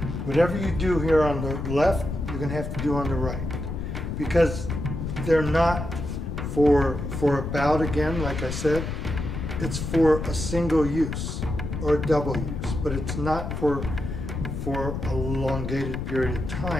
Whatever you do here on the left, you're gonna have to do on the right. Because they're not for a bout again, like I said. It's for a single use or a double use, but it's not for a elongated period of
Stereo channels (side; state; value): left; noise; rumble, 5 dB below the sound